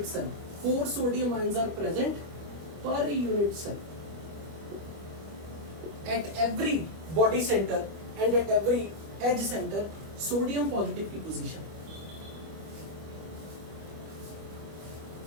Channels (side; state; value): left; late; 25 ms